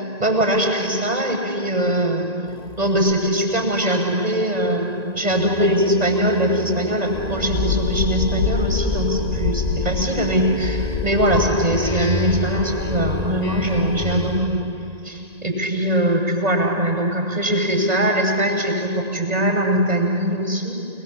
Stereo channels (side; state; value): left; late; 1.9 ms